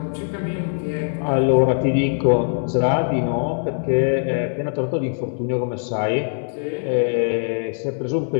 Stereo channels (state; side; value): silent; right; digital silence